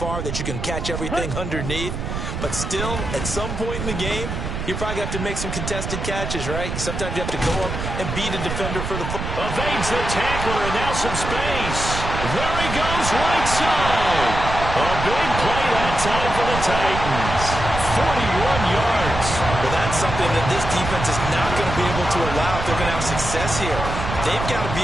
that you can catch everything underneath. But still, at some point in the game, you probably have to make some contested catches, right? Sometimes you have to go up and beat a defender for the football. Evades the tackler, and now some space. There he goes, right side. A big play that time for the Titans. 41 yards. Well, that's something that this defense is not going to be able to allow if they're going to have success here. They've got to be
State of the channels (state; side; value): noise; right; rumble, 5 dB below the sound